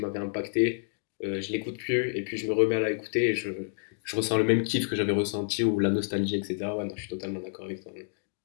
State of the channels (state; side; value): silent; right; digital silence